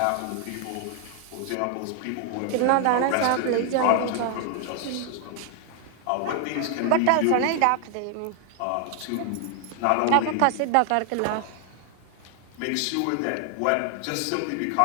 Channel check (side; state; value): both; different; correlation 0.00